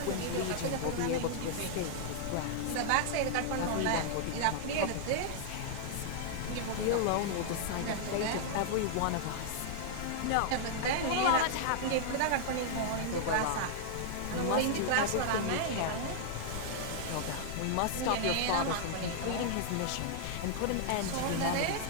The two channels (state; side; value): different; both; correlation -0.01